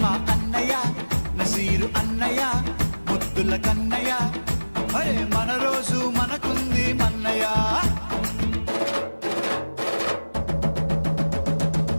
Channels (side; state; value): both; inverted; correlation -1.00